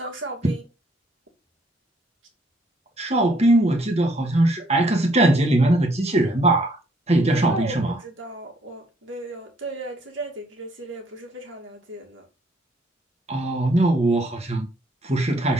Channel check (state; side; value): normal; both; correlation 0.67